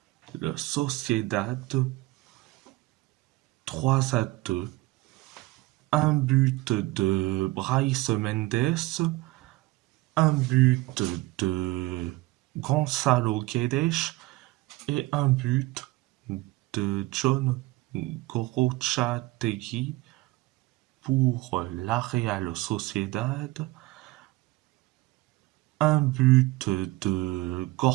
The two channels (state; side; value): quieter; left; 19.9 dB